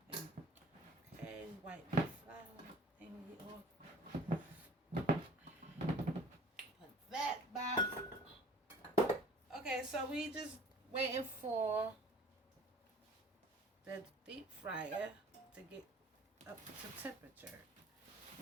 Okay, wipe the flour thingy off. Put that back. Okay, so we just waiting for the deep fryer to get up to temperature.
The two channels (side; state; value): both; normal; correlation 0.48